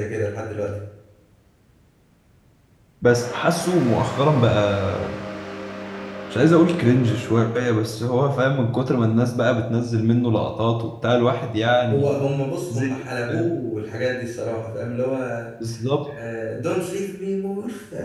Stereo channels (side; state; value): both; identical; correlation 1.00